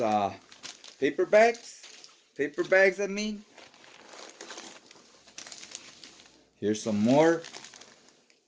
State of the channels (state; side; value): identical; both; correlation 1.00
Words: paper bags, I mean. Here's some more.